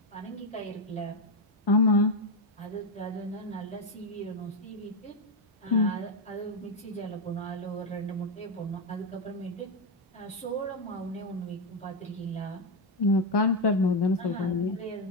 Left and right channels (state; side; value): normal; both; correlation 0.04